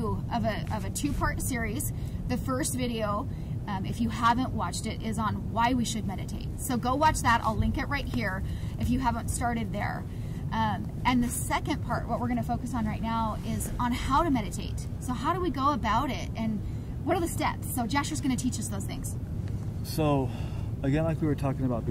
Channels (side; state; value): both; identical; correlation 1.00